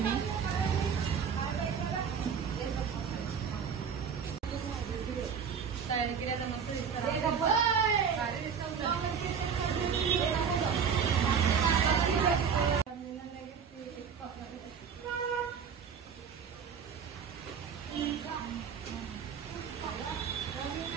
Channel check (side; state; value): left; quieter; 6.9 dB